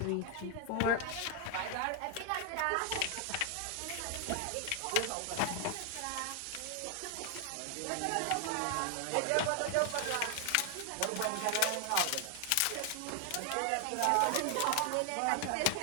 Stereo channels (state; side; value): different; both; correlation 0.00